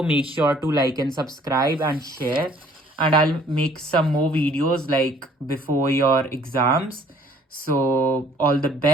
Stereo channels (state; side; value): normal; both; correlation 0.57